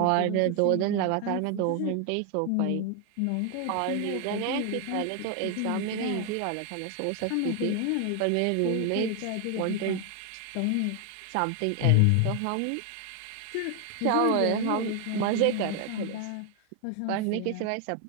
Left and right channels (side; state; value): both; different; correlation 0.00